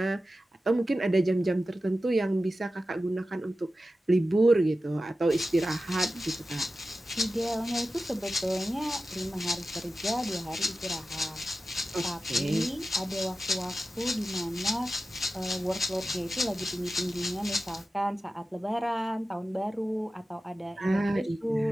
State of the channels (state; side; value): normal; both; correlation 0.94